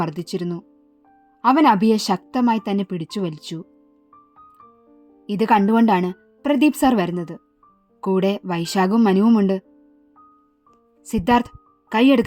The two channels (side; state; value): both; identical; correlation 1.00